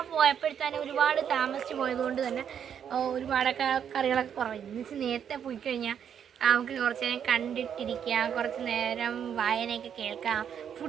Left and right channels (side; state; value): left; quieter; 8.4 dB